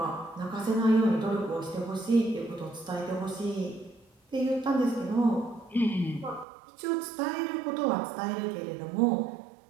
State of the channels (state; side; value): drops out; left; at 6.5 s